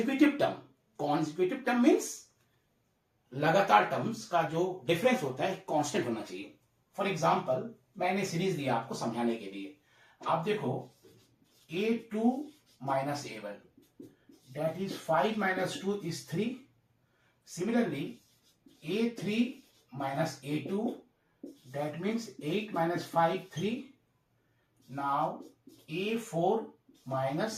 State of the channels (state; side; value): identical; both; correlation 1.00